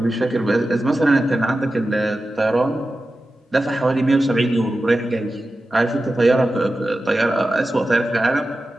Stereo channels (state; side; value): normal; both; correlation 0.93